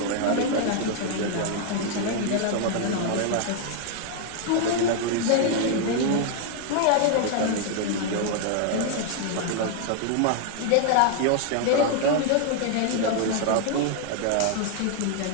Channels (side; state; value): both; different; correlation 0.00